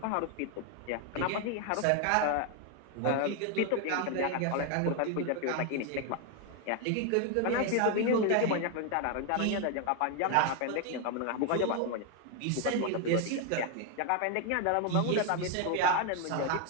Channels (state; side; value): different; both; correlation 0.01